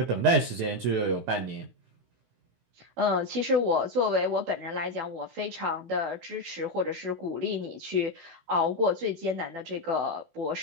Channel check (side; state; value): left; late; 16 ms